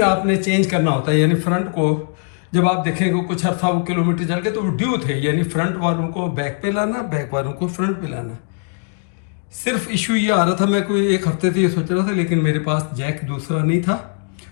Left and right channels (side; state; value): right; silent; 55 dB below the other